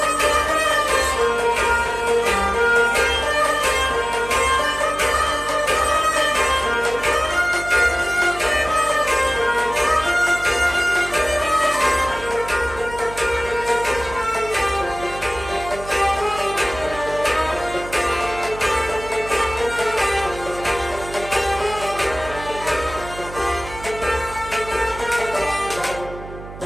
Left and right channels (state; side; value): noise; right; hum, 14 dB below the sound